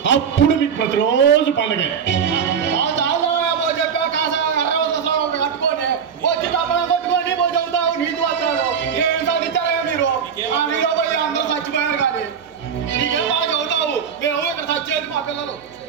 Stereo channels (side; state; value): left; quieter; 7.2 dB